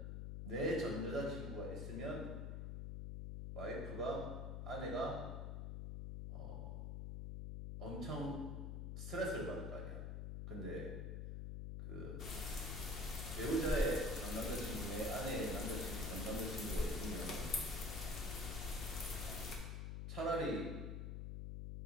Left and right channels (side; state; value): left; noise; hum, 4 dB below the sound